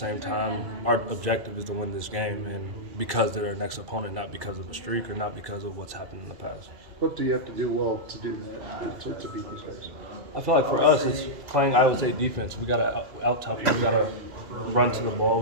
time, our objective is to win this game, and because they're our next opponent, not because of the streak or not because of what's happened in the past. What do you have to do well to do that, to beat these guys? I feel like for us, it's playing Iowa State defense. We got to out-tough them. We got to run to the ball.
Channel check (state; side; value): late; left; 2.4 ms